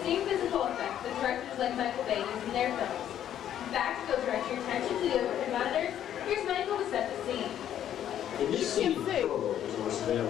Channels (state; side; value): quieter; right; 10.6 dB